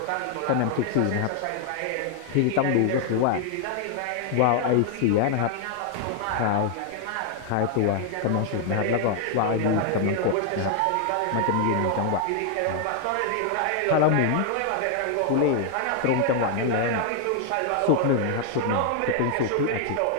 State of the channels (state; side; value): different; both; correlation 0.00